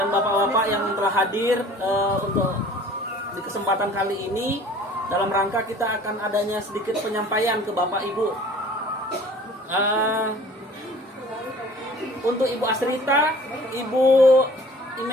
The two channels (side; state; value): both; normal; correlation 0.48